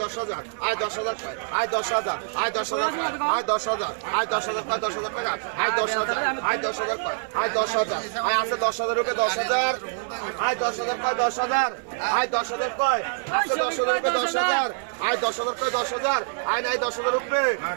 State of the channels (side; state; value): left; silent; 56 dB below the other